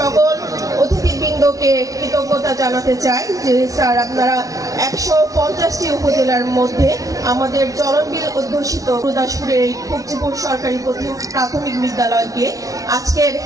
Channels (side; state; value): left; late; 0.17 ms